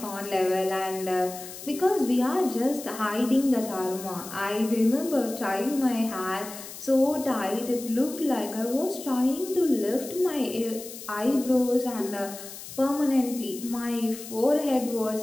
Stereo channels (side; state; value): left; noise; hiss, 13 dB below the sound